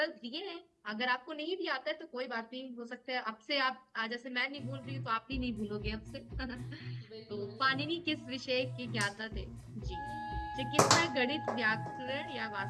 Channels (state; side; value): identical; both; correlation 1.00